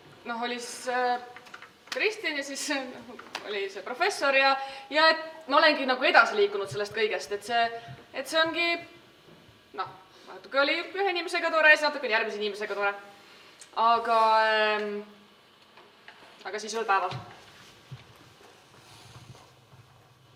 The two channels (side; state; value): both; identical; correlation 1.00